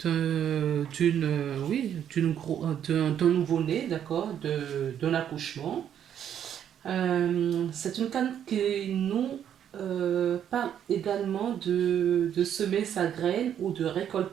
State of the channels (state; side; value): quieter; left; 9.5 dB